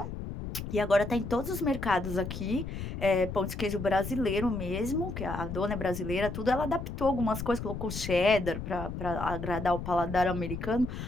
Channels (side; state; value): left; noise; rumble, 7 dB below the sound